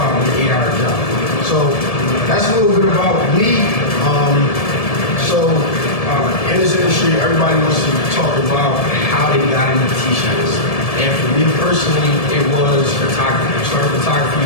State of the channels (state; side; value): late; right; 1.7 ms